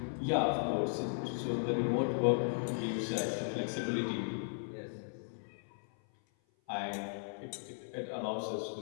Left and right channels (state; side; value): silent; right; 53 dB below the other